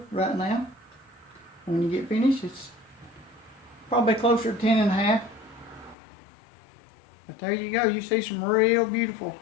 right now. When you get finished, it's probably closer to 10.5. But there you go. You see some real beautiful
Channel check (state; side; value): drops out; right; at 6.0 s